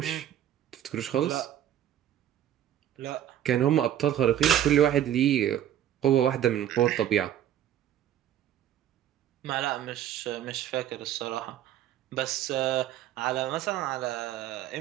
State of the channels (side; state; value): left; quieter; 11.1 dB